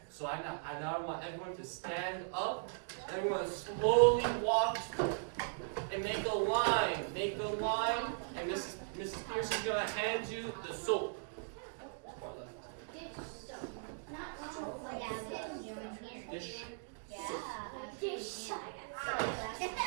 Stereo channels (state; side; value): silent; left; digital silence